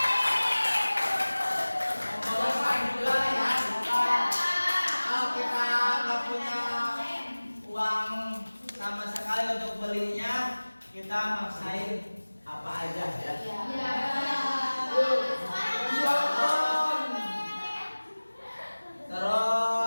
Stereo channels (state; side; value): inverted; both; correlation -1.00